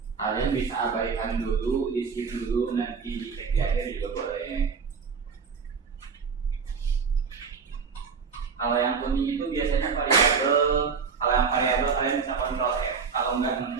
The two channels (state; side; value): quieter; left; 5.7 dB